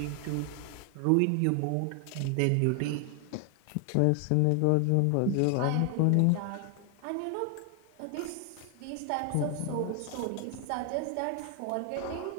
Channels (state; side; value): different; both; correlation 0.00